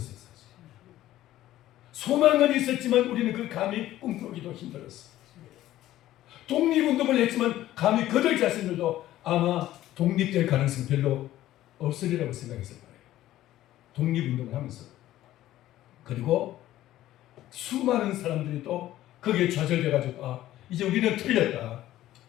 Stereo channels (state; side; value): quieter; right; 14.2 dB